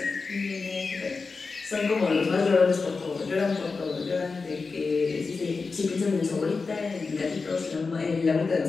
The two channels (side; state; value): right; quieter; 4.4 dB